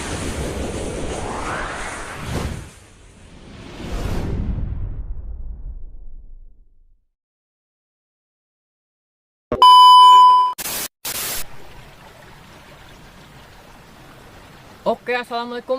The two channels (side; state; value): both; identical; correlation 1.00